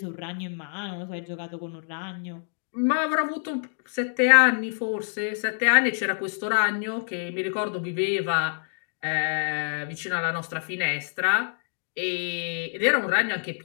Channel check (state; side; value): silent; right; digital silence